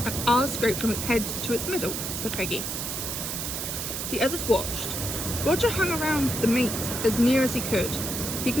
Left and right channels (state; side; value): noise; right; hiss, 4 dB below the sound